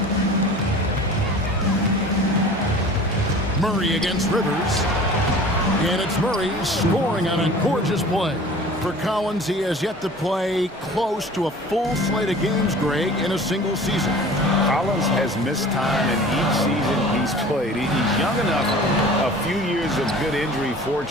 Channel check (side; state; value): both; normal; correlation 0.43